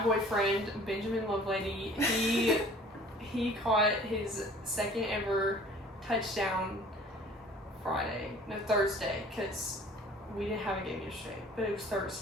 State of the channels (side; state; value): both; normal; correlation 0.50